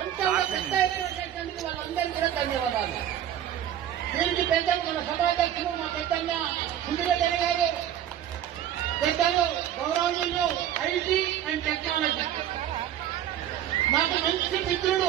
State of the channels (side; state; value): left; quieter; 11.0 dB